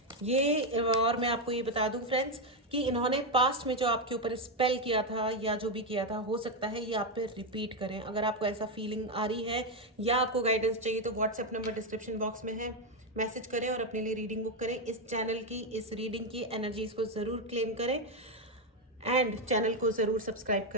ये और मैं आपको ये बता दूं फ्रेंड्स कि इन्होंने पास्ट में जो आपके ऊपर स्पेल किया था या जो भी किया था, हो सकता है ये आप पे रिपीट करें। अगर आपको ऐसा फीलिंग आ रही है या आपको गाइडेंस चाहिए तो व्हाट्सएप नंबर डिस्क्रिप्शन बॉक्स में है, मैसेज करें और अपने लिए रीडिंग बुक करें। इस चैनल की, इस रीडिंग की एनर्जीज को ज़रूर क्लेम करें, एंड चैनल को ज़रूर सब्सक्राइब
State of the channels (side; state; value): both; normal; correlation 0.06